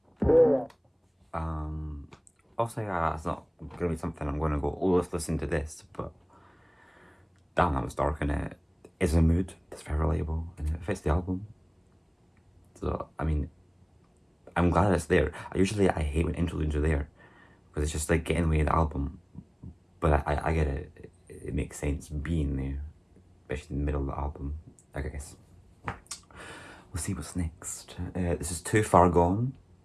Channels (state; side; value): identical; both; correlation 1.00